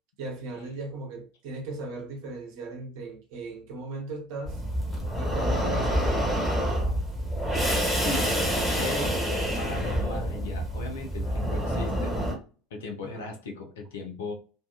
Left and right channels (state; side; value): normal; both; correlation 0.63